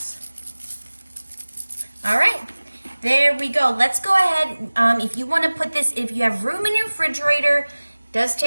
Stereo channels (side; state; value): both; inverted; correlation -1.00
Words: All right, there we go. Let's go ahead. If you want to put this, if you have room in your refrigerator, it does